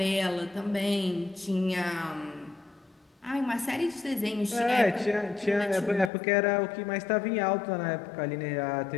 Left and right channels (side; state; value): right; drops out; at 6.1 s